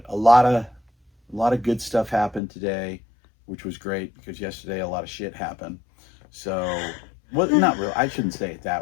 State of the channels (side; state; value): right; drops out; at 2.4 s